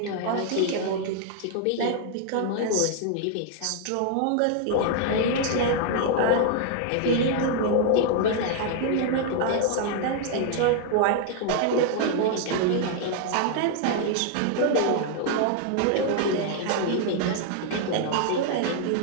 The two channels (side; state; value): both; different; correlation 0.00